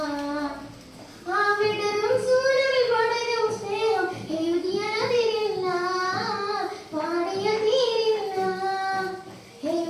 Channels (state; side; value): identical; both; correlation 1.00